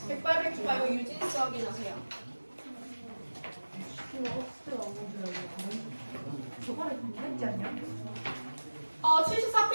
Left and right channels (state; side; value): inverted; both; correlation -1.00